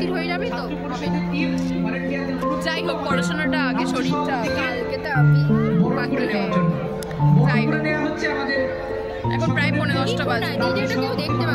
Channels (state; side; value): identical; both; correlation 1.00